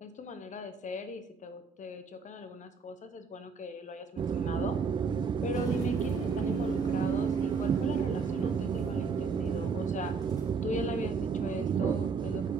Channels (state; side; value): quieter; left; 5.0 dB